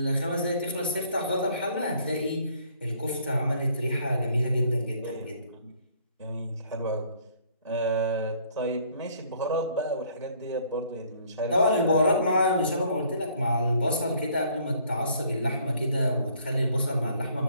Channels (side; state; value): both; inverted; correlation -0.61